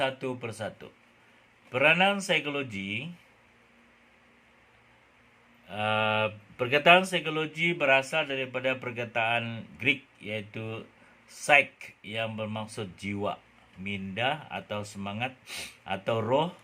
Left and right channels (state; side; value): identical; both; correlation 1.00